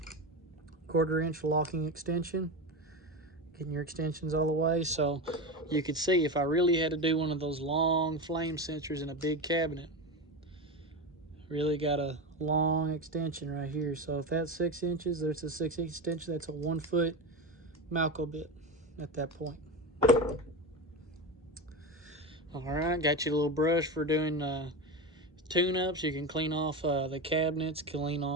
1/4 inch locking extension. Getting your extensions all the way, so you could see if I really had to do one of those long flame sensors in a big cabinet, really got a long extension right here. So if that's 6 inches, there's a 6-inch extension. That's a 1-foot Malco bit at that point. All right, got you a little brush for doing tune-ups. You can clean off the cabinets, clean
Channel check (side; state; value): both; normal; correlation 0.20